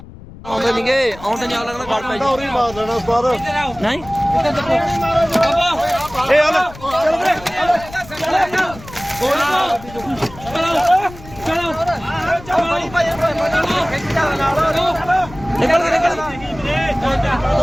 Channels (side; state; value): left; noise; rumble, 17 dB below the sound